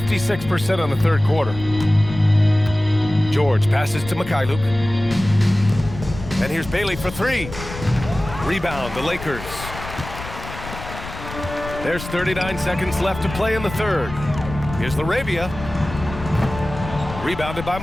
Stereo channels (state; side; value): noise; left; rumble, 11 dB below the sound